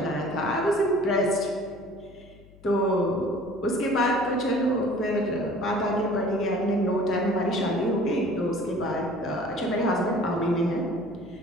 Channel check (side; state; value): left; noise; hum, 24 dB below the sound